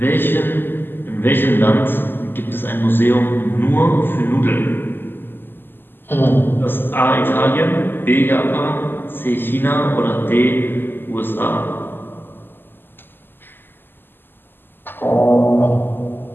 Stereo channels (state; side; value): late; right; 0.096 ms